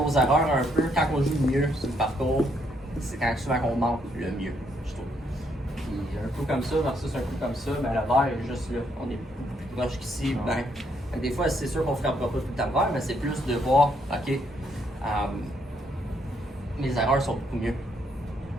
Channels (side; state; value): both; normal; correlation 0.73